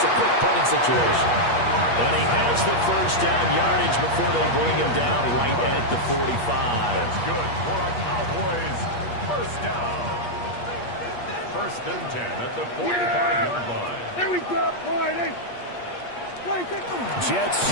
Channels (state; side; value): late; right; 8.4 ms